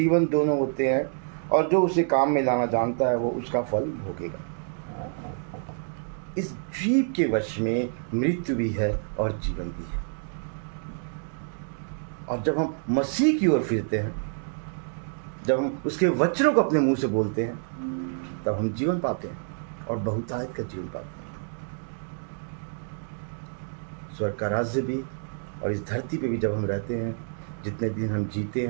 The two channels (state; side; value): silent; left; 60 dB below the other